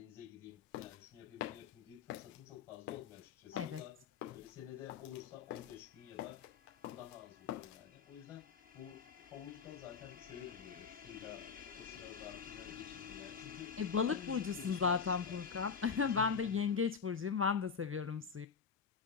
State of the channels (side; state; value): right; quieter; 6.0 dB